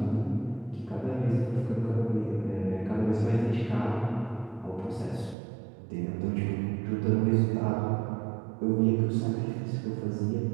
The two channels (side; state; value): left; drops out; at 5.4 s